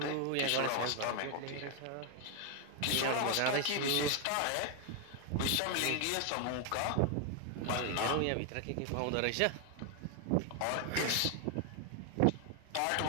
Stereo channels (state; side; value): different; both; correlation 0.00